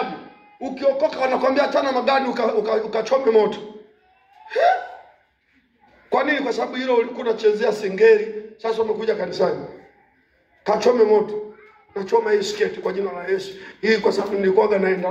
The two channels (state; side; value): identical; both; correlation 1.00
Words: Ukiokoka wanakuambia tana magari ukachome moto. Kwa nini? Kwa sababu hilo ulikuwa unachezea singeri, sasa umekuja kanisani. Kachome moto. Nachoma hii sketi kwa jina la Yesu. Hii kwa sababu nilikuwa naenda